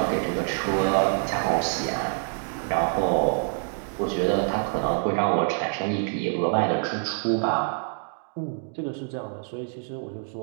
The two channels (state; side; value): silent; left; 61 dB below the other